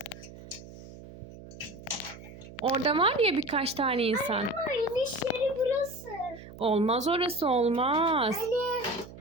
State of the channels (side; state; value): right; noise; hum, 16 dB below the sound